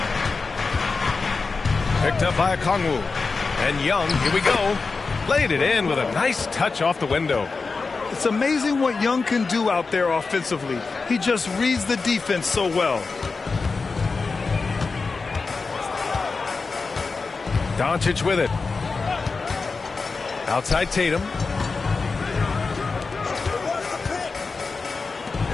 Picked up by Okongwu. And Young, here we go. Played it in with a nice touch off the window. It's amazing what Young can do out there offensively. He just reads the defense so well. Doncic with it. Outside Tatum.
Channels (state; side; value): quieter; right; 4.3 dB